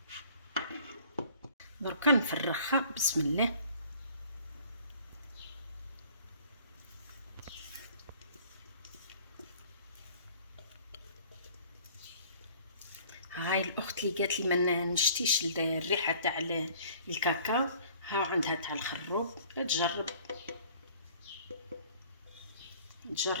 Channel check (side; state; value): both; inverted; correlation -0.52